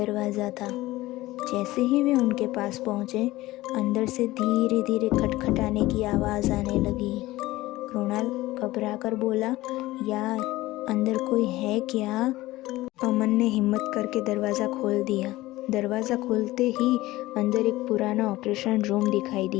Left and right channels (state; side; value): quieter; right; 17.9 dB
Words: था। जैसे ही वे उनके पास पहुँचे, अंदर से धीरे धीरे खटखटाने की आवाज़ आने लगी। कृणाल घबराकर बोला, यार अंदर कोई है क्या? अमन ने हिम्मत करके दरवाज़ा खोल दिया। दरवाज़ा खोलते ही अंदर एक पुराना ऑपरेशन रूम दिखाई